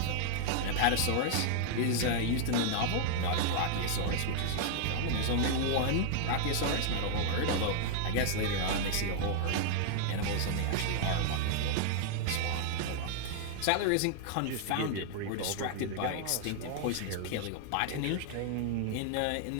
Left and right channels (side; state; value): both; different; correlation 0.00